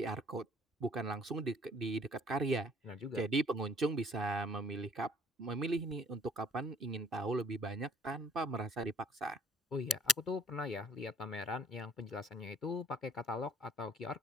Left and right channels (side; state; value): both; normal; correlation 0.56